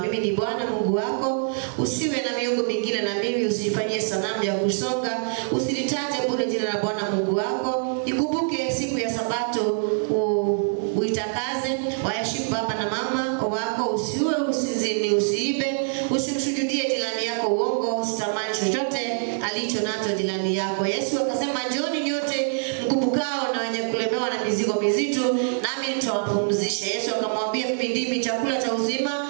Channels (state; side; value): silent; left; 62 dB below the other